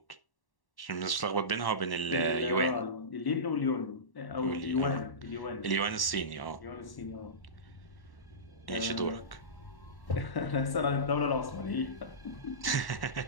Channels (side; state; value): right; late; 1.1 ms